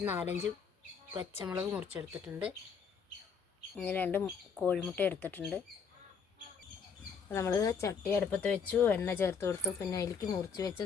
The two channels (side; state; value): right; quieter; 6.1 dB